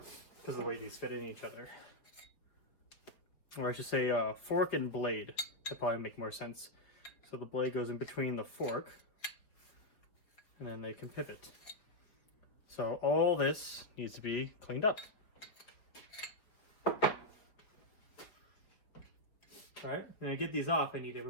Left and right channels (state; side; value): late; right; 4.9 ms